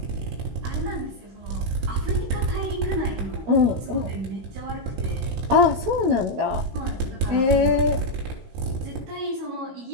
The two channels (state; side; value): late; left; 16 ms